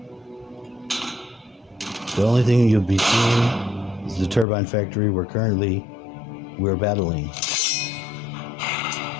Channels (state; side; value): drops out; right; at 4.5 s